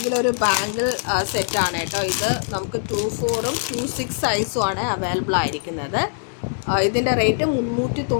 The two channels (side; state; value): right; silent; digital silence